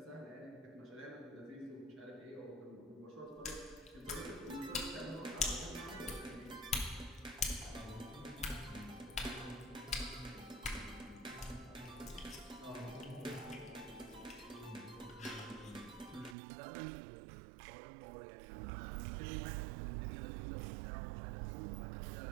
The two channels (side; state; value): left; drops out; at 16.4 s